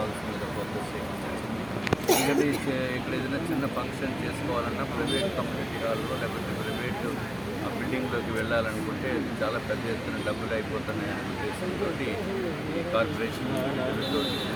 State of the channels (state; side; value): noise; right; hum, 20 dB below the sound